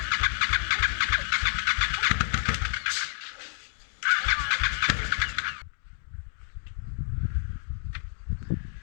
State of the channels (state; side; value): silent; right; digital silence